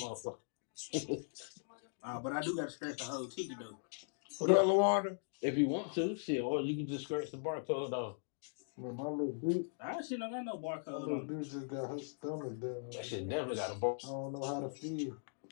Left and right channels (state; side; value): silent; right; digital silence